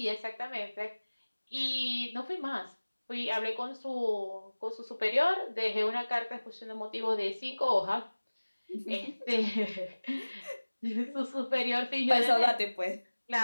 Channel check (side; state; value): both; inverted; correlation -1.00